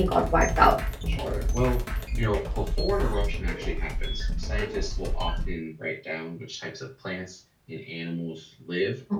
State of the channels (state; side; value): identical; both; correlation 1.00